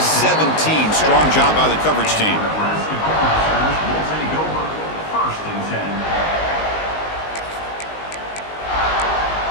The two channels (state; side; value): late; right; 19 ms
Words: Strong job by the coverage team.